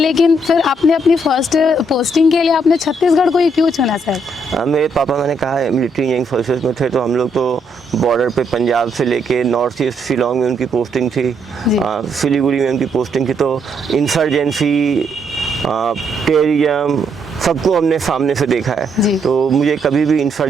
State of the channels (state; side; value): normal; both; correlation 0.74